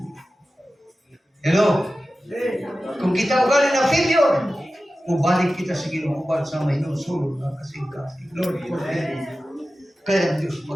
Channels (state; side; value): normal; both; correlation 0.94